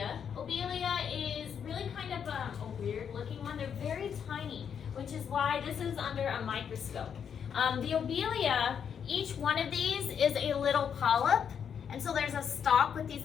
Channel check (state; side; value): quieter; right; 7.7 dB